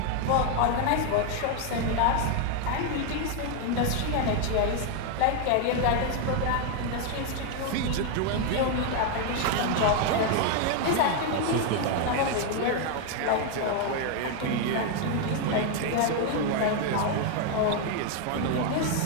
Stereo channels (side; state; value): both; different; correlation 0.01